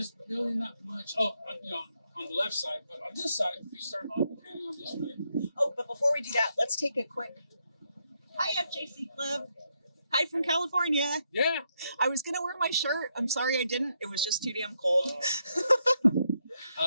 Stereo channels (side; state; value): both; inverted; correlation -0.79